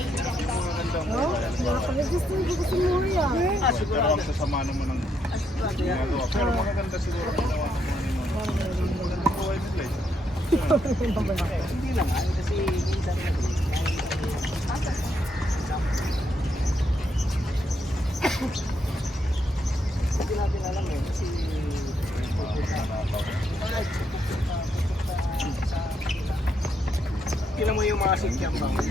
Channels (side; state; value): both; normal; correlation 0.77